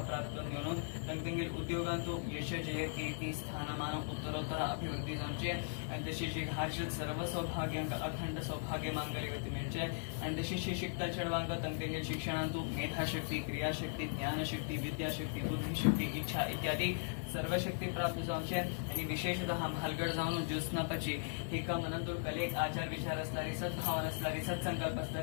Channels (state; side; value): silent; right; digital silence